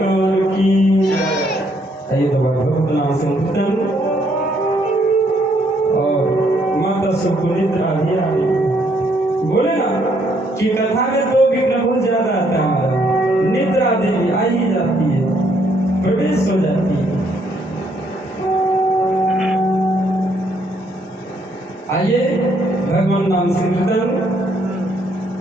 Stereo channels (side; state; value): both; normal; correlation 0.70